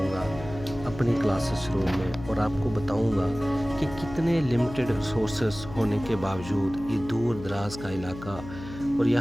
अपनी क्लासेस रूम में और आपको बताऊँगा कि कितने लिमिटेड रिसोर्सेस होने के बावजूद ये दूर दराज का इलाका और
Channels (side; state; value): left; noise; hum, 13 dB below the sound